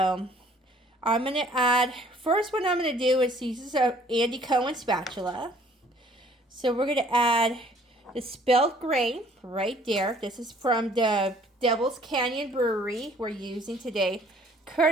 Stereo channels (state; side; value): normal; both; correlation 0.57